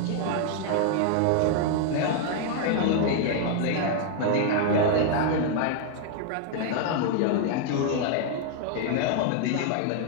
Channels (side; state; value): both; different; correlation 0.00